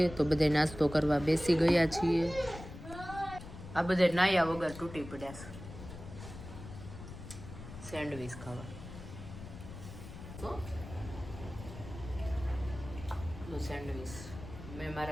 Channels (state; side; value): noise; left; rumble, 12 dB below the sound